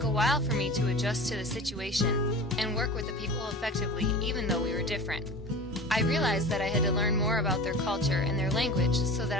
a while for me to adjust to the situation and work with the people effectively even though we were different. I realized that I had to learn more about their culture and their language so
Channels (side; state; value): both; normal; correlation 0.34